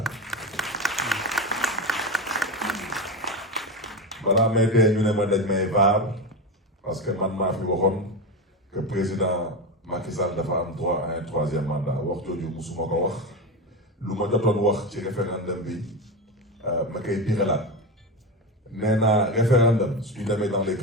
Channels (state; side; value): normal; both; correlation 0.18